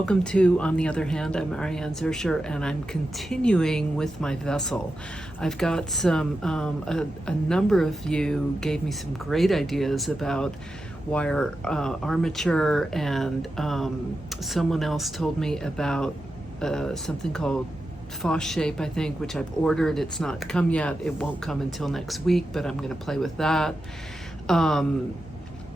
to On the Other Hand. I'm Ariane Zurcher and I'm continuing with my vessel. I've got a number of you gave me some great ideas about wire armature, and someone else told me about something called Foss shape, I think, which I've ordered. It's not come yet. It won't come until next week, but I'm going to play with that. And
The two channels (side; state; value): both; normal; correlation 0.90